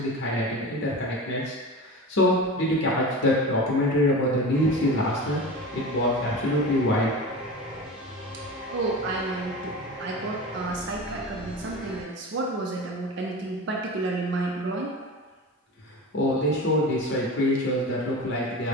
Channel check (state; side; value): normal; both; correlation 0.30